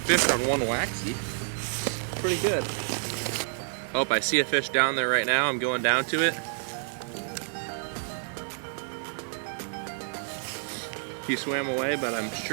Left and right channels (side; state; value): left; silent; digital silence